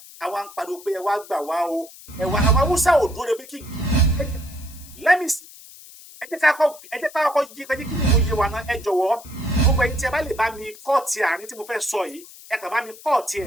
àwa ń pariwo pé ẹ wá gbà wá o ẹ wá àwọn Haúsá ò dúró de bí kí let me see ẹ jẹ́ ká kọ́kọ́ yí kí ni mo yé wa náà ẹ jọ̀wọ́ gbogbo ẹ̀yin tí ẹ bá lè bá mi kọ́ọ̀tì àárín tí mo fẹ́ sọ yìí ẹ kàn bá mi kọ́ọ̀tì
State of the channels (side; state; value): left; noise; hiss, 19 dB below the sound